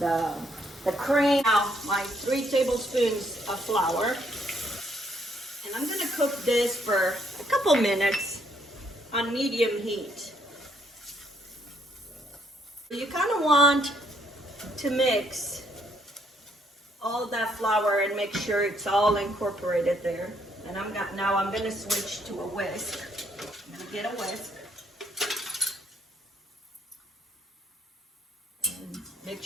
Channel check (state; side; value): normal; both; correlation 0.70